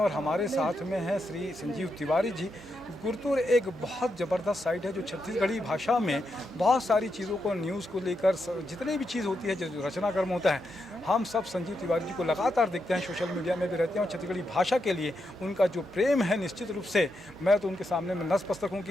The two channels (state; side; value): normal; both; correlation 0.83